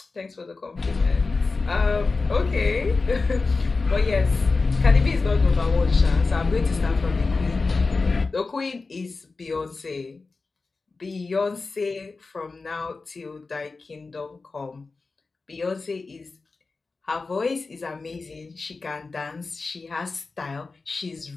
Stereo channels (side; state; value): right; quieter; 4.0 dB